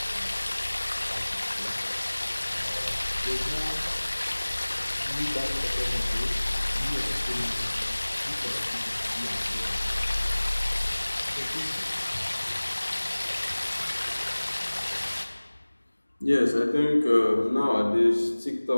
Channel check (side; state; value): both; inverted; correlation -1.00